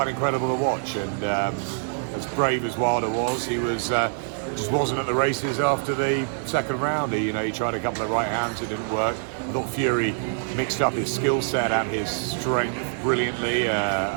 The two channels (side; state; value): left; silent; digital silence